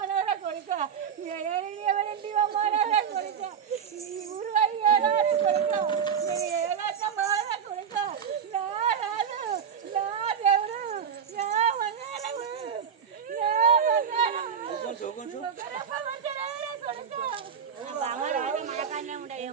కొడుక ఎవరింటి అమ్మానవరా కొడుక ఈ ఊరు అయ్యారా కొడుక నేను ఏలాగా మారా కొడుక నా రాజు నా దేవుడు నా మంగళము నా మనకాన్నే ఉండే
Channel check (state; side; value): quieter; left; 7.5 dB